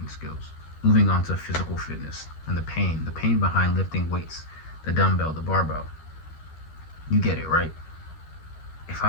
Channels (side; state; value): right; late; 13 ms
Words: skills. Moving on to physical fitness and the pain behind lifting weights, the dumbbell, the barbell. You get it, right? If